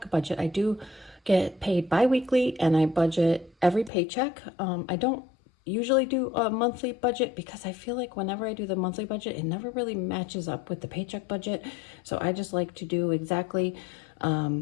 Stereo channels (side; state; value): right; drops out; at 3.9 s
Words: budget. I do get paid bi-weekly and I budget every paycheck. I don't usually do a monthly budget because I feel like whenever I do the monthly budget, it never really matches up with the paycheck budget. So I just like to do exactly